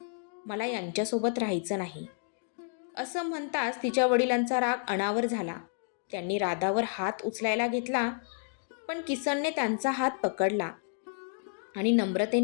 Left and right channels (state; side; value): silent; right; digital silence